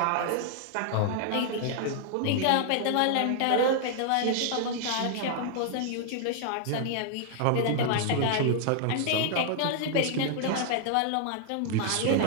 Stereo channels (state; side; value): different; both; correlation -0.01